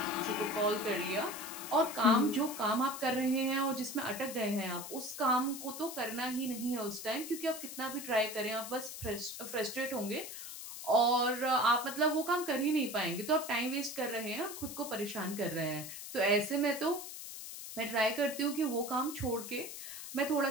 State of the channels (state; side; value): noise; left; hiss, 10 dB below the sound